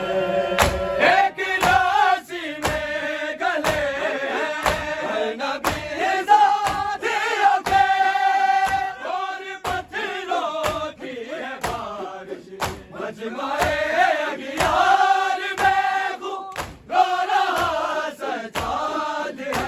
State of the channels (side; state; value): both; identical; correlation 1.00